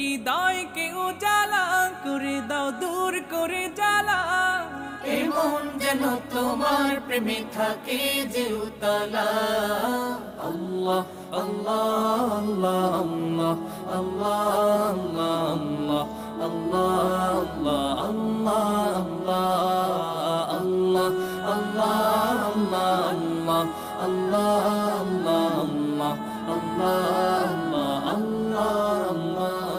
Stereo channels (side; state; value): both; identical; correlation 1.00